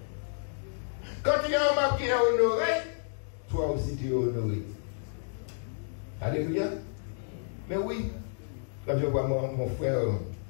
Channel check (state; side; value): silent; right; digital silence